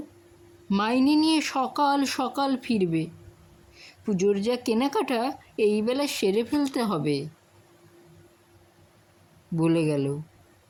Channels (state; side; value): identical; both; correlation 1.00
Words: মাইনে নিয়ে সকাল সকাল ফিরবে। পুজোর যা কেনাকাটা এই বেলা সেরে ফেলতে হবে। বলে গেল